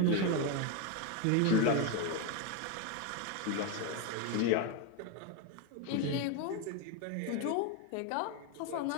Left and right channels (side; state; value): both; different; correlation 0.02